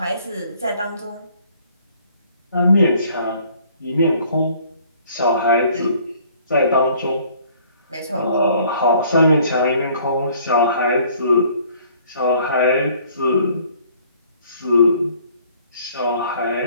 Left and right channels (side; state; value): both; inverted; correlation -0.58